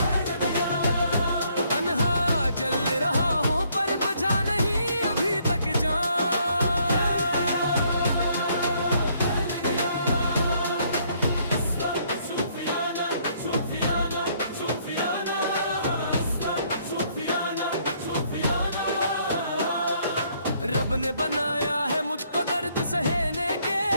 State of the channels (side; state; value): both; inverted; correlation -0.67